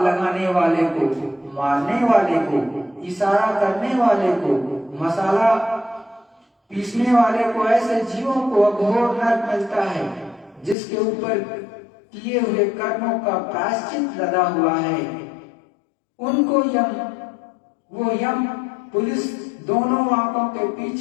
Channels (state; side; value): drops out; right; at 10.8 s